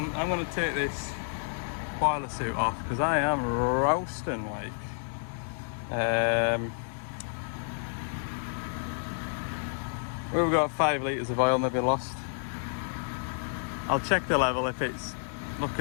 I'm going to take this boiler suit off because I am roasting like. We've got 5 litres of oil maybe lost. I'll check the level. If it's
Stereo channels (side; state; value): right; silent; digital silence